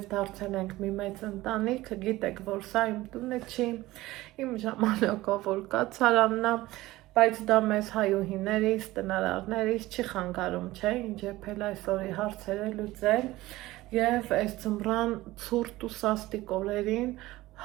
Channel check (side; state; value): left; quieter; 17.9 dB